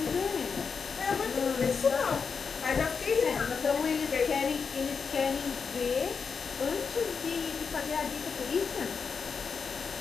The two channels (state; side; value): quieter; right; 5.7 dB